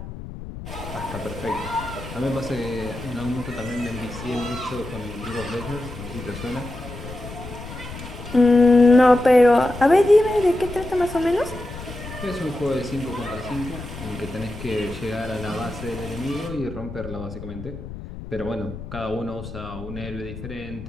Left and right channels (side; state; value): left; noise; rumble, 11 dB below the sound